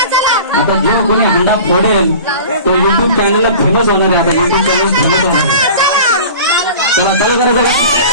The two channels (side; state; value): both; inverted; correlation -0.40